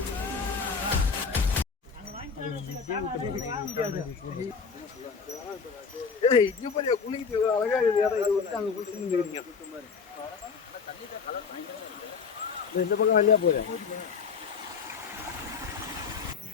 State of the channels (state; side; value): quieter; right; 5.6 dB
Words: இந்த பக்கம் வழியா போயிரு.